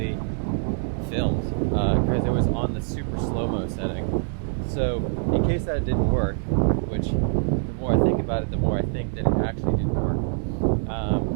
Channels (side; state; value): left; silent; digital silence